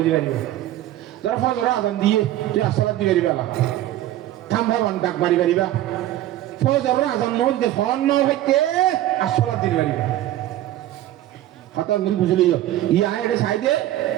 dibani dar fajr azan diye tu salat dibe bala thamba wan dak bari bari ba ফজর আজান নল দে von ন হইতে আসলা দিন বাড়ি কথা মিল বুঝলি ইয়া এর সাইডে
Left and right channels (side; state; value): left; quieter; 14.0 dB